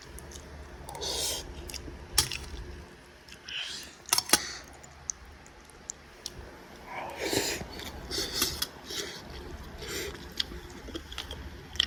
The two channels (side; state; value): both; identical; correlation 1.00